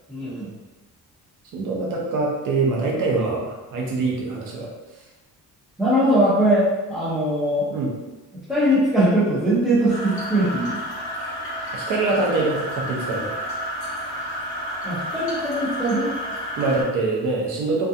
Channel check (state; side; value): normal; both; correlation 0.38